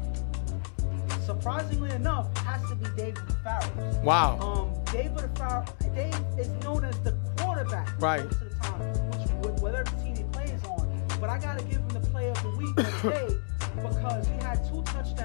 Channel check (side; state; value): right; silent; digital silence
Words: surprisingly enough, Dave of the Pharaohs. Wow. Dave is known as the quarterback most of the time, whatever team he plays on. But I got to give him the player of the week or the day because he had 2